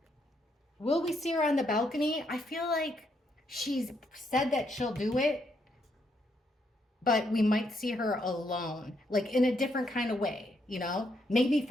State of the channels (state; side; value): normal; both; correlation 0.76